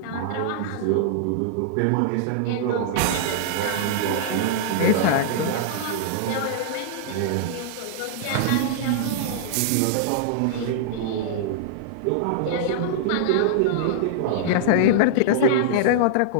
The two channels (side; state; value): both; different; correlation -0.01